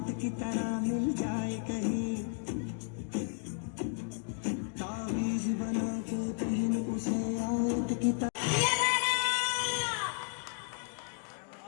की तरह मिल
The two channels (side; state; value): right; silent; 56 dB below the other